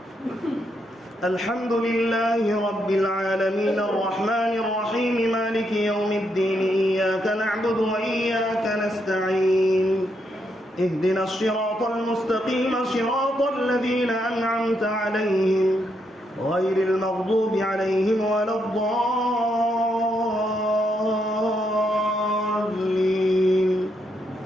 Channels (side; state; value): both; normal; correlation 0.78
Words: الحمد لله رب العالمين الرحمن الرحيم مالك يوم الدين إياك نعبد وإياك نستعين اهدنا الصراط المستقيم صراط الذين أنعمت عليهم غير المغضوب عليهم ولا الضالين.